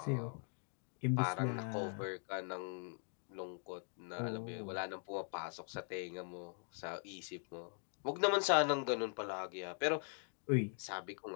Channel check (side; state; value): right; silent; 50 dB below the other